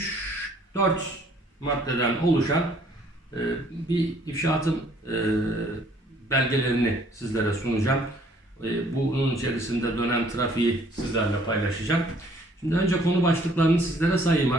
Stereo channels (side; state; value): both; normal; correlation 0.60